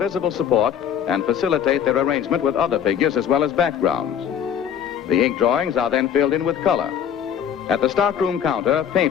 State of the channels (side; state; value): right; quieter; 8.8 dB